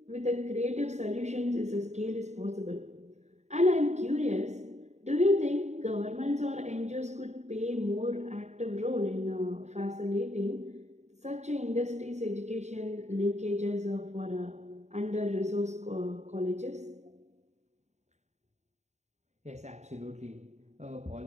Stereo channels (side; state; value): left; late; 0.33 ms